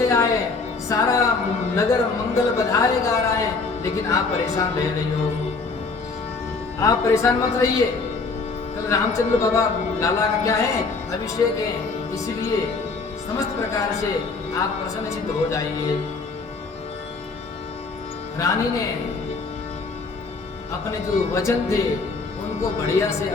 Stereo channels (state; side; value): quieter; right; 4.2 dB